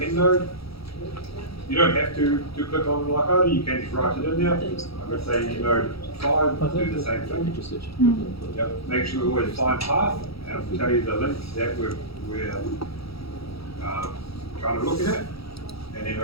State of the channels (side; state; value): right; late; 0.76 ms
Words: end node. You don't have to click on like other, you can just write it in there. I'm going to say node 5, do the same thing. Yep. Make sure we always find path, and I'll tell you the links that we're kind of looking at, and then